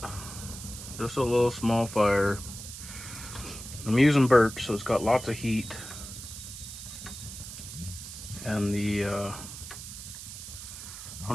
Just a little small fire. I'm using birch, so it's got lots of heat. And the, I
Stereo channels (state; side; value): noise; right; hiss, 11 dB below the sound